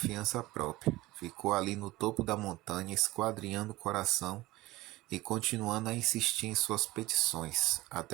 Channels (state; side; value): quieter; left; 18.7 dB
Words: própria. Ficou ali no topo da montanha, esquadrinhando o coração e continuando a insistir em suas petições,